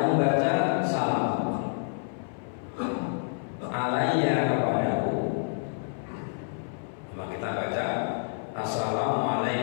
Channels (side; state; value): right; silent; 59 dB below the other